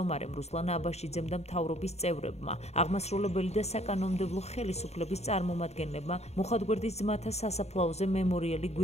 რუსლან აბაშიძემ და მთავრობის წევრებმა, აღმასრულებელი და საკანონმდებლო ხელისუფლების წარმომადგენლებმა მუხათგვერდის ძმათა სასაფლაოზე მემორიალი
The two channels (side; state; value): right; late; 0.31 ms